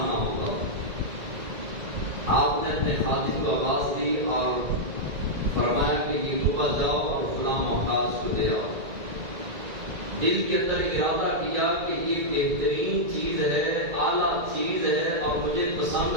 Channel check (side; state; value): left; late; 2.0 ms